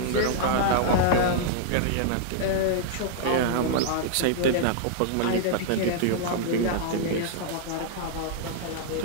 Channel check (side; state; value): both; different; correlation -0.01